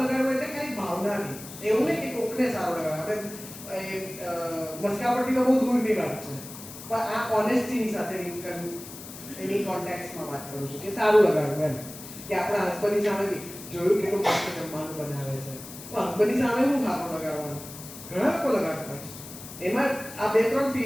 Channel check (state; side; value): noise; left; hiss, 14 dB below the sound